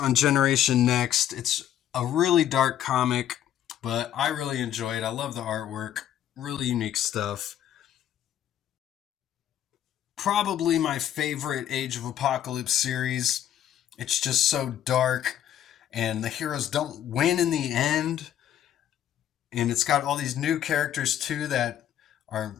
Generation Next. It's a really dark comic, but I really enjoy it. I love the artwork. Really unique stuff. Probably my favorite Age of Apocalypse series. It's just so dark and the heroes don't win in the end. And it's got all these new characters too that are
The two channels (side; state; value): right; quieter; 10.9 dB